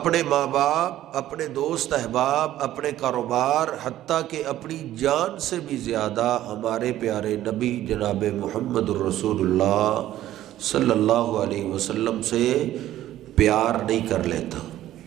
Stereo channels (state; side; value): quieter; left; 13.4 dB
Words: ماں باپ، اپنے دوست احباب، اپنے کاروبار، حتیٰ کہ اپنی جان سے بھی زیادہ ہمارے پیارے نبی جناب محمد الرسول اللہ صلی اللہ علیہ وسلم سے پیار نہیں کر لیتا۔